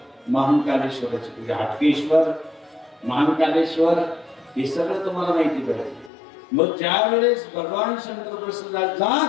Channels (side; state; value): right; drops out; at 6.1 s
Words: महाकालेश्वराची पूजा. हाटकेश्वर, महाकालेश्वर हे सगळं तुम्हाला माहिती पाहिजे. मग ज्या वेळेस भगवान शंकर प्रसन्न